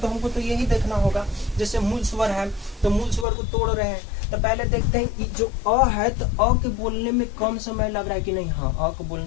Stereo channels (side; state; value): right; drops out; at 3.2 s